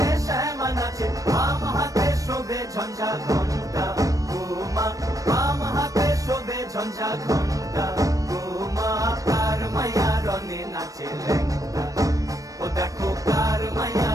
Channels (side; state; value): left; late; 0.16 ms